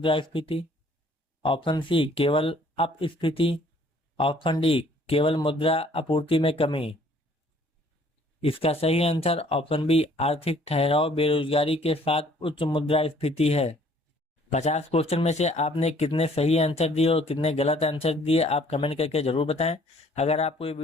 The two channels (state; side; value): normal; both; correlation 0.58